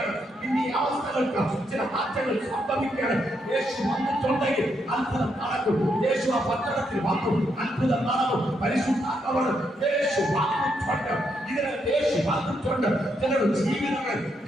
ഇനി ഈ അവസ്ഥകൾക്ക് ചില മാറ്റങ്ങൾ സംഭവിക്കുകയാണ്. യേശു വന്നിട്ടുണ്ടെങ്കിൽ അത്ഭുതം നടക്കും. യേശു ആ പട്ടണത്തിൽ വന്നു, അത്ഭുതം നടക്കും. പരിശുദ്ധാത്മാവാണ് യേശു വന്നിട്ടുണ്ട്. ഇതിനകത്ത് യേശു വന്നിട്ടുണ്ട്. ചിലരുടെ ജീവിതങ്ങൾ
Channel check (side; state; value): both; normal; correlation 0.78